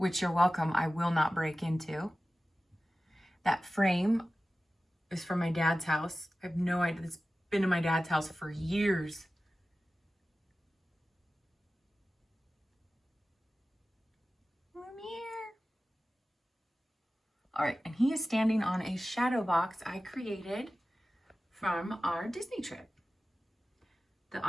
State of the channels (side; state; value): both; normal; correlation 0.95